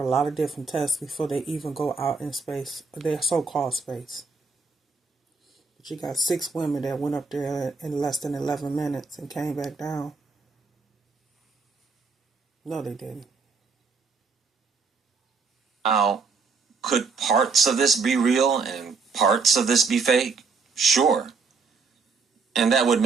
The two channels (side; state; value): left; quieter; 4.7 dB